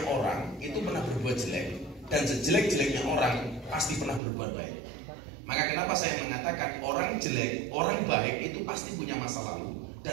orang itu pernah berbuat jelek, dan sejelek-jeleknya orang pasti pernah berbuat baik. Maka kenapa saya mengatakan orang jelek, orang baik itu pasti punya masa lalu,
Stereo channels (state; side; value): drops out; left; at 4.2 s